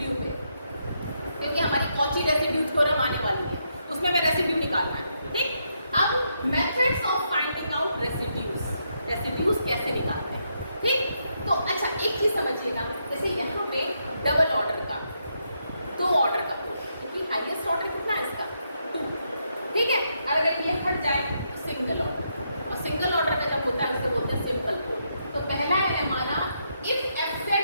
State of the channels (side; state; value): both; inverted; correlation -0.79